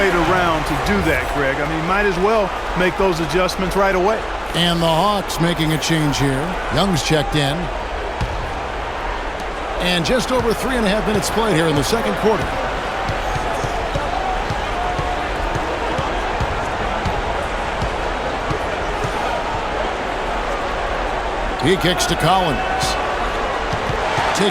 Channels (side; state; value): both; identical; correlation 1.00